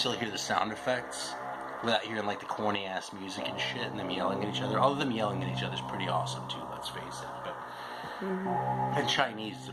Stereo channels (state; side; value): identical; both; correlation 1.00